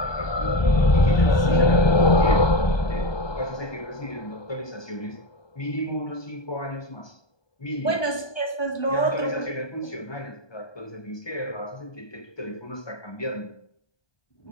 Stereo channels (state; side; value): late; right; 1.2 ms